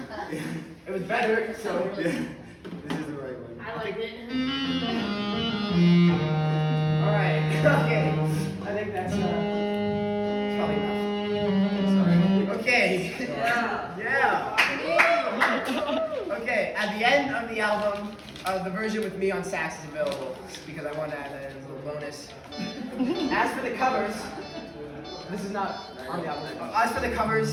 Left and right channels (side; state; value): both; identical; correlation 1.00